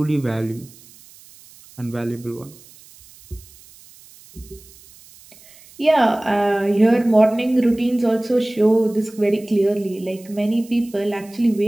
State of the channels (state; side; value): noise; right; hiss, 24 dB below the sound